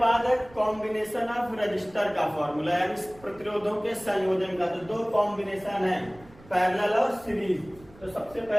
है कॉम्बिनेशन ऑफ रजिस्टर का फॉर्मूला, यानी प्रतिरोधों के संयोजन का। तो दो कॉम्बिनेशन है, पैरेलल और सीरीज। तो सबसे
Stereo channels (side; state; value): right; noise; rumble, 23 dB below the sound